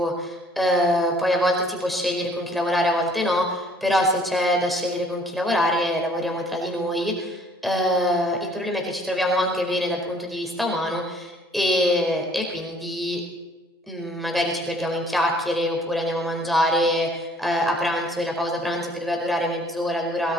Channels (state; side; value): normal; both; correlation 0.58